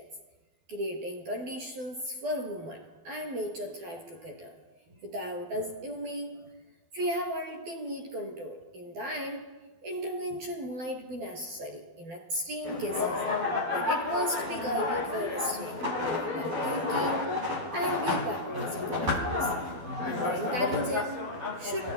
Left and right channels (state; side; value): late; left; 12 ms